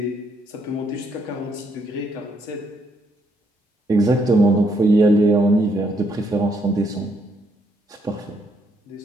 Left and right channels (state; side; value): normal; both; correlation 0.73